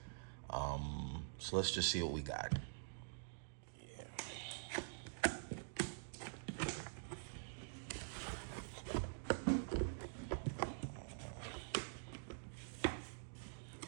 So let's just see what we got.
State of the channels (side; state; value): left; silent; digital silence